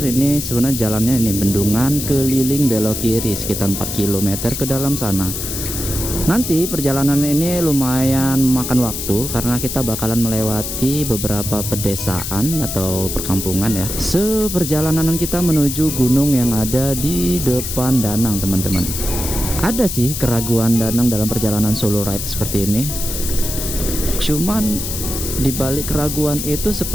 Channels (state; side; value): noise; left; hiss, 5 dB below the sound